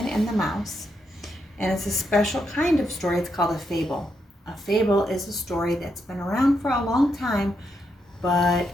and the Mouse, and it's a special kind of story. It's called a fable. A fable is a story that's been around for a long time, but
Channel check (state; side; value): normal; both; correlation 0.81